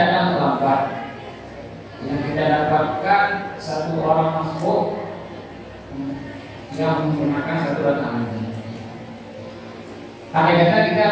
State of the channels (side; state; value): both; identical; correlation 1.00